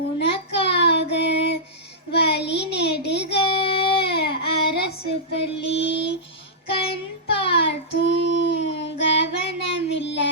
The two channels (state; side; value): normal; both; correlation -0.13